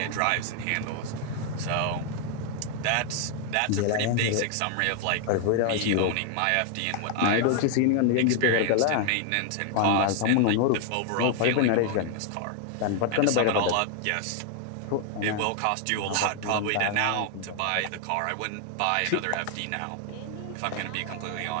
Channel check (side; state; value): both; different; correlation 0.00